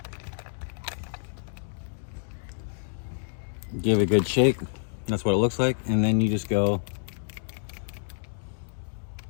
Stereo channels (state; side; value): silent; right; digital silence